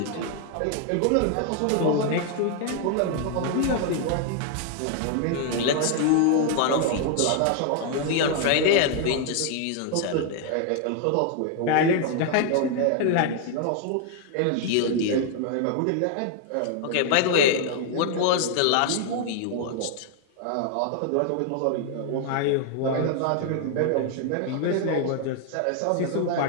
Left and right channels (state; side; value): different; both; correlation 0.00